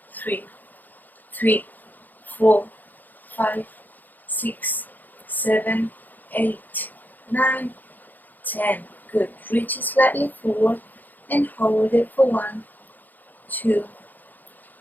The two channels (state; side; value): late; right; 0.085 ms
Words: 3, 4, 5, 6, 7, 8, 9, 10. Good. Reach it slightly forward and hold it for 1, 2,